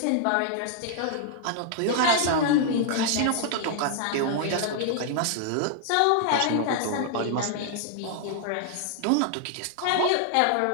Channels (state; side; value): different; both; correlation 0.00